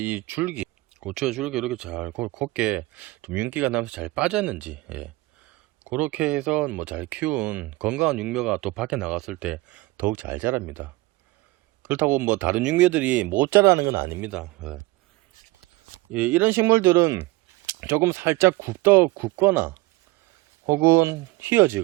이 줄기, 고추의 줄기 이렇게 잘 곱게 좀 윤기가 나면서 잘 빠졌는지, 그렇게 해서 뭐 잘 키운 건강한 육묘가 또 밖에 나갔을 때 더욱 잘 자랍니다. 그렇다고 뭐 다른 육묘들이 못 자라는 건 아닙니다. 이런 식물들은 조금 살짝 굽거나 혹은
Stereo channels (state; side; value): quieter; left; 20.8 dB